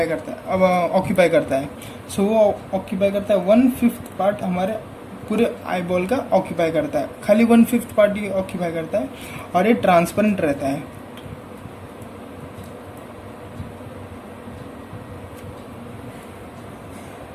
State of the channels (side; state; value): both; identical; correlation 1.00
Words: करता है, अब ऑक्यूपाई करता है, सो वो ऑक्यूपाई करता है 1/5 पार्ट हमारे पूरे आईबॉल का ऑक्यूपाई करता है. खाली 1/5 पार्ट ही ऑक्यूपाई करता है और ये ट्रांसपेरेंट रहता है.